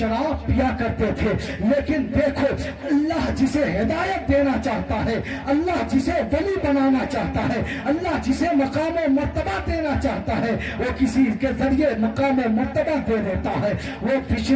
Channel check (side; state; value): both; identical; correlation 1.00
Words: پیا کرتے تھے. لیکن دیکھو اللہ جسے ہدایت دینا چاہتا ہے, اللہ جسے ولی بنانا چاہتا ہے, اللہ جسے مقام و مرتبہ دینا چاہتا ہے وہ کسی کے ذریعے مقام و مرتبہ دے دیتا ہے. وہ